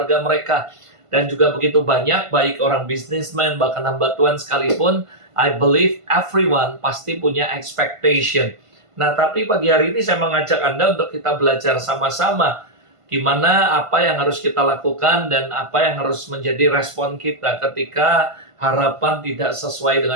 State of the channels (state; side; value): late; left; 1.5 ms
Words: mereka. Dan juga begitu banyak, baik orang businessman, bahkan hamba Tuhan sekalipun, I believe everyone pasti punya expectation. Nah, tapi pagi hari ini saya mengajak Anda untuk kita belajar sama-sama gimana, apa yang harus kita lakukan dan apa yang harus menjadi respon kita ketika harapan tidak sesuai